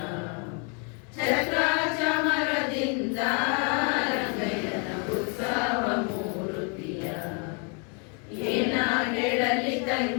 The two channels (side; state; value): right; quieter; 35.9 dB